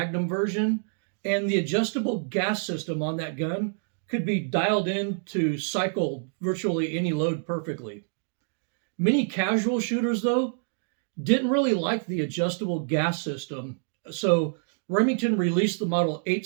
version, and the adjustable gas system on that gun could be dialed in to cycle virtually any load perfectly. Many casual shooters, though, didn't really like the adjustable gas system, so Remington released the Model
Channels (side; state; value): left; silent; digital silence